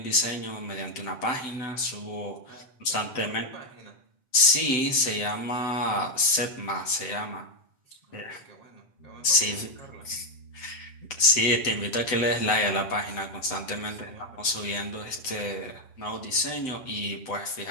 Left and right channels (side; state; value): right; late; 7.9 ms